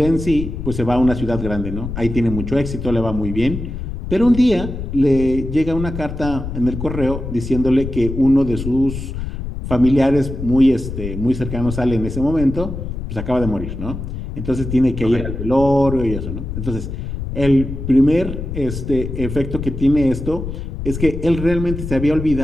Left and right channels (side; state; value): left; noise; rumble, 6 dB below the sound